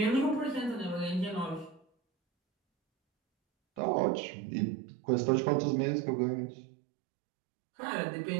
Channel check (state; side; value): drops out; left; at 3.8 s